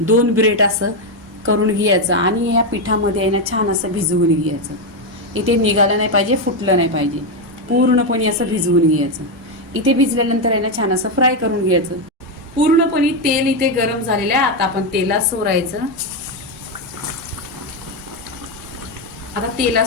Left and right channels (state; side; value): normal; both; correlation 0.06